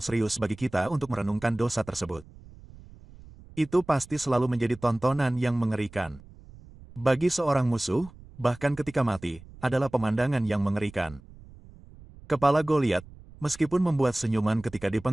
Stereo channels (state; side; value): noise; right; rumble, 20 dB below the sound